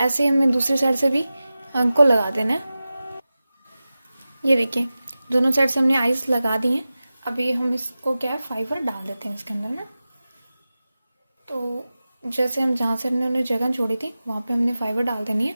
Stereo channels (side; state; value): both; inverted; correlation -0.95